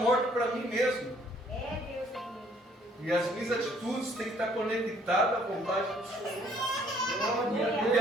mortas para mim mesmo. É Deus. E as minhas atitudes têm que estar conectadas à vontade do Senhor. Porque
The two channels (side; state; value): both; normal; correlation 0.62